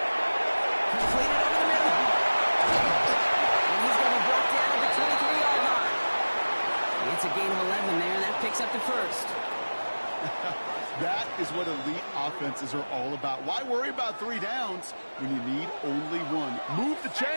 Completed over the middle. And he's going to be brought down at the 23-yard line. It's a gain of 11 there, and that picks up the first. That is what elite offenses are all about. Why worry about 3 downs when you need only one? Move the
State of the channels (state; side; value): inverted; both; correlation -1.00